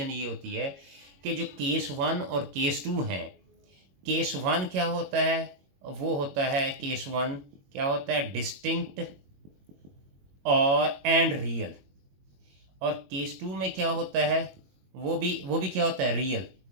ये होती है कि जो केस 1 और केस 2 हैं, केस 1 क्या होता है, वो होता है केस 1 क्या होता है, डिस्टिंक्ट और एंड रियल। और केस 2 में क्या होता है, वो भी क्या होता है, रियल,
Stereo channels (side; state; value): left; late; 21 ms